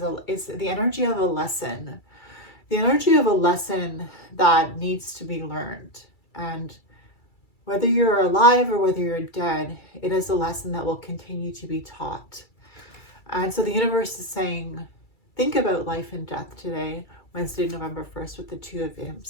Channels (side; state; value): right; late; 2.3 ms